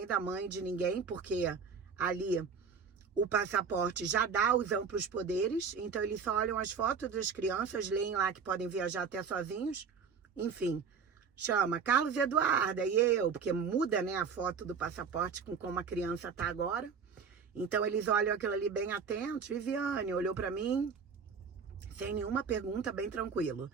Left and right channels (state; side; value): quieter; left; 6.0 dB